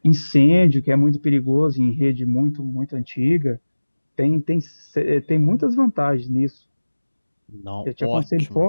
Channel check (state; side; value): inverted; both; correlation -1.00